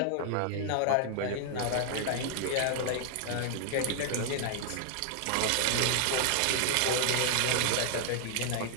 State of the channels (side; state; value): both; different; correlation 0.00